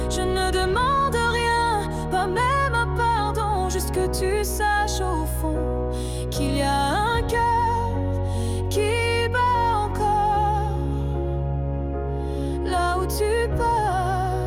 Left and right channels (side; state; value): both; identical; correlation 1.00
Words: Je ne demande rien, pas même un pardon, juste que tu saches au fond qu'il y a un cœur qui bat encore là où tu